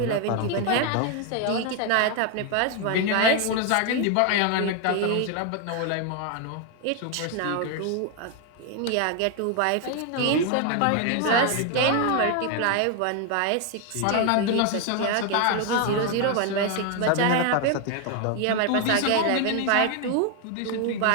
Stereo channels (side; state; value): both; different; correlation 0.01